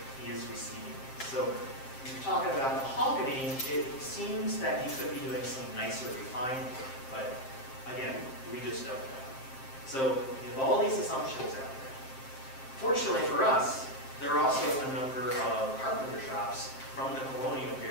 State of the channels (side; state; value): right; late; 7.6 ms